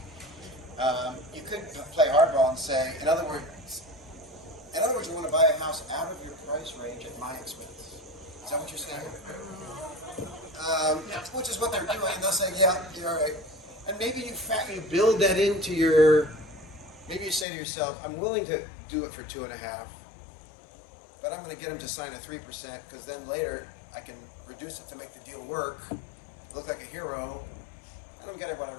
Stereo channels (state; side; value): drops out; right; at 17.4 s